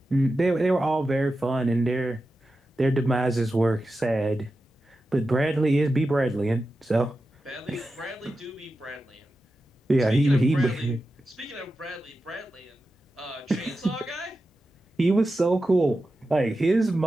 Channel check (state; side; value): normal; both; correlation 0.91